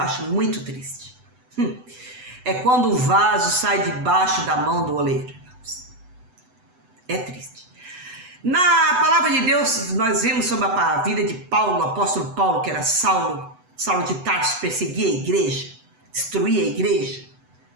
acho muito triste é quando o vaso sai debaixo da mão do oleiro, irmãos. É triste. Na palavra de Deus, nós vemos sobre a vida de Paulo, o apóstolo Paulo, que era Saulo de Tarso, perseguia a igreja, destruía a igreja,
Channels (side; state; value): left; late; 8.0 ms